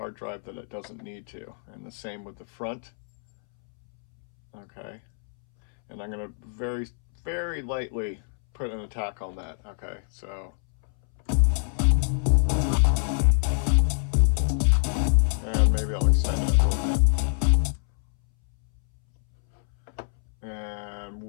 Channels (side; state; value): right; silent; 61 dB below the other